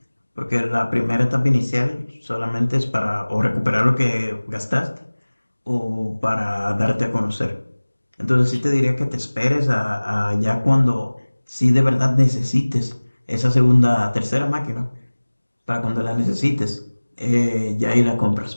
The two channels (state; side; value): inverted; both; correlation -1.00